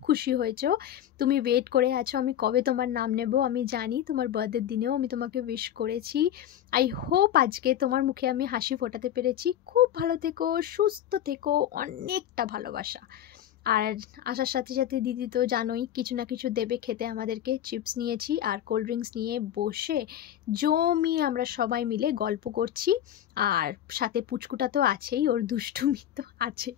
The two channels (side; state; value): right; quieter; 11.1 dB